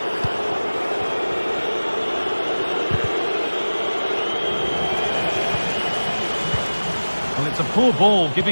Well, it's a poor ball,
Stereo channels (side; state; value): both; inverted; correlation -1.00